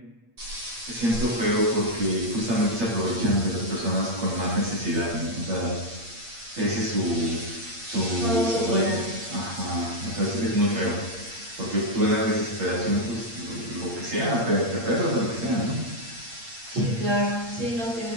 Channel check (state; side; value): late; left; 8.7 ms